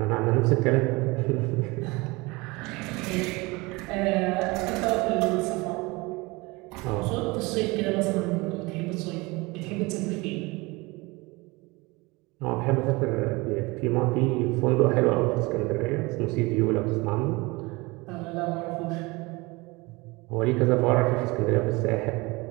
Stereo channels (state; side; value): quieter; left; 24.1 dB